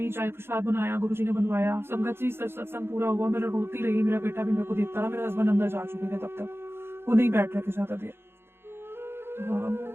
चाय प्रसाद बनाया, गुरुजी ने बनवाया, संगत जी सत्संग पूरा हुआ, मेरा रोती रही, मेरा बेटा भी मेरे को देखता रहा, मेरे हस्बैंड अंदर जा चुके थे तब तक, वो नहीं बैठ रहे थे ज्यादा देर।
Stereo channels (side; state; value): left; late; 0.11 ms